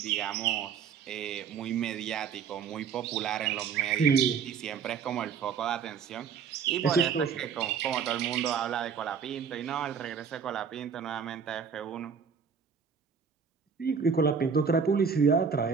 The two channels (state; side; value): quieter; left; 6.5 dB